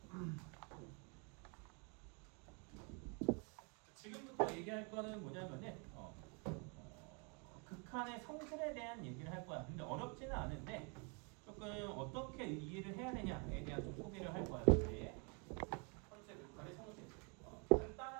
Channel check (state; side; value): quieter; left; 34.9 dB